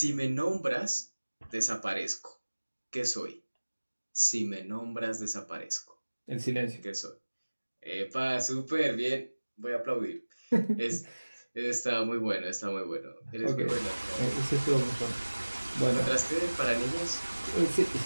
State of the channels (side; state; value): both; inverted; correlation -1.00